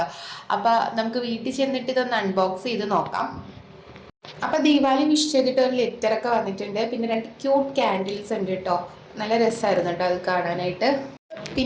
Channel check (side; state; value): both; identical; correlation 1.00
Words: അപ്പോൾ നമുക്ക് വീട്ടിൽ ചെന്നിട്ട് ഇതൊന്ന് അൺബോക്സ് ചെയ്ത് നോക്കാം. അപ്പോൾ ദീപാവലി വിഷ് ചെയ്തിട്ട് ഒരു ലെറ്ററൊക്കെ വന്നിട്ടുണ്ട്. പിന്നെ 2 ക്യൂട്ട് ക്യാൻഡിൽസ് ഉണ്ട് കേട്ടോ. നല്ല രസമായിരുന്നു കേട്ടോ അത് കാണാനായിട്ട്.